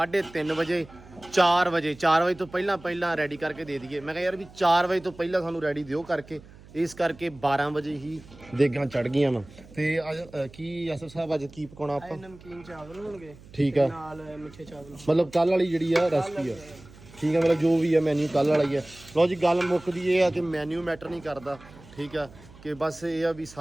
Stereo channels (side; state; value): right; noise; hum, 21 dB below the sound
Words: ਵਜੇ 4 ਵਜੇ ਤੋਂ ਪਹਿਲਾਂ ਰੈਡੀ ਕਰਕੇ ਦੇ ਦਈਏ ਮੈਂ ਕਿਹਾ ਯਾਰ ਵੀ 4 ਵਜੇ ਤੋਂ ਪਹਿਲਾਂ ਸਾਨੂੰ ਰੈਡੀ ਦਿਓ ਕਰਕੇ ਇਸ ਕਰਕੇ 12 ਵਜੇ ਹੀ ਦੇਗਾਂ ਚੜ ਗਈਆਂ ਵਾ ਤੇ ਅੱਜ ਕੀ ਆਸਫ ਸਾਹਿਬ ਅੱਜ ਕੀ ਪਕਾਉਣਾ ਆਪਾਂ ਨਮਕੀਨ ਚਾਵਲ ਹੋਣਗੇ ਠੀਕ ਆ ਨਾਲ ਮਿੱਠੇ ਚਾਵਲ ਮਤਲਬ ਕੱਲ ਵਾਲੀ ਜਿਹੜੀ ਆ ਰੈਸਪੀ ਆ ਠੀਕ ਆ ਮਤਲਬ ਜੋ ਵੀ ਆ ਮੈਨੂ ਕੱਲ ਵਾਲਾ ਹੀ ਆ ਲਓ ਜੀ ਗੱਲ ਮੁੱਕਦੀ ਇਹ ਆ ਕਿ ਮੈਨੂ ਮੈਟਰ ਨਹੀਂ ਕਰਦਾ ਠੀਕ ਆ ਕਿ ਬਸ ਇਹ ਆ ਵੀ